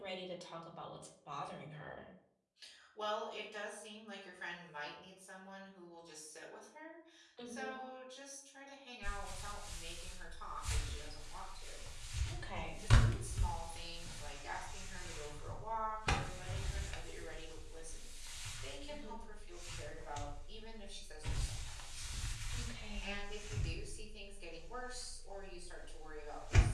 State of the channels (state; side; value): identical; both; correlation 1.00